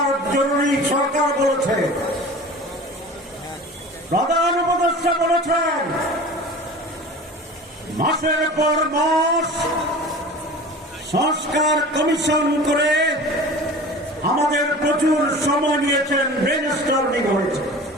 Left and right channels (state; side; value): normal; both; correlation 0.38